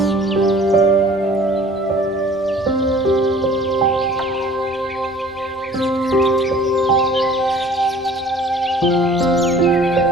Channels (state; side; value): normal; both; correlation 0.50